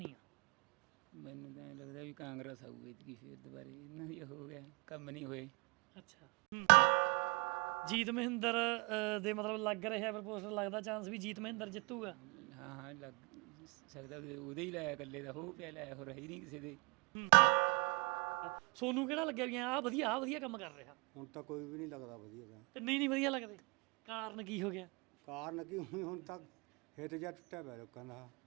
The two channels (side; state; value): left; quieter; 31.0 dB